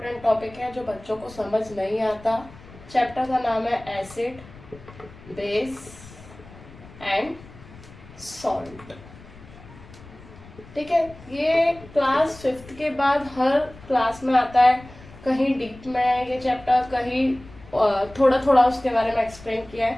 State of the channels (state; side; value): noise; left; rumble, 20 dB below the sound